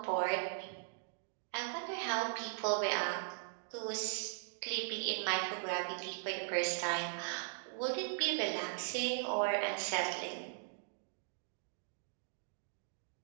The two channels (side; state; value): left; silent; digital silence